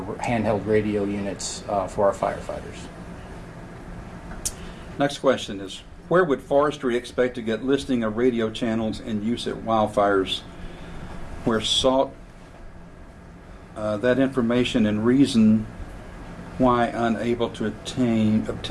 handheld radio units for our firefighters. Next question is, where would forestry expect to get listing of radio channels in use at wildfires? Where sought that information and reason why unable to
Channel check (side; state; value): both; identical; correlation 1.00